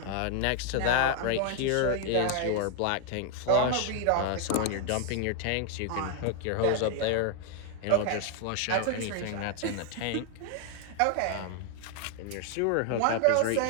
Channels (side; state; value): both; different; correlation 0.00